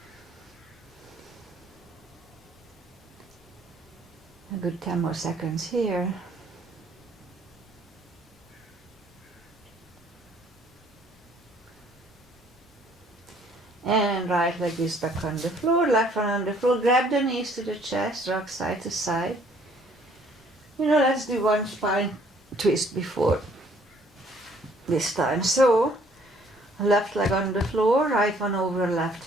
A good 10 more seconds here. And right leg is back on the floor, left one on the floor. Grab the knees to the chest, rock side to side. Let's do one spine twist before this time. So, left leg on the floor, right one over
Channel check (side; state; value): both; normal; correlation 0.61